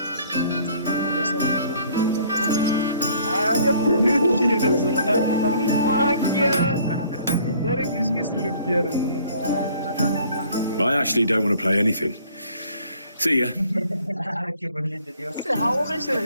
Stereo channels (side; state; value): both; inverted; correlation -0.57